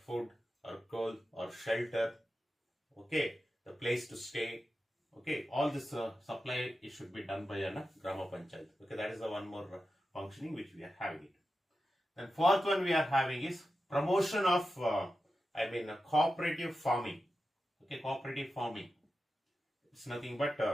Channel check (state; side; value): normal; both; correlation 0.91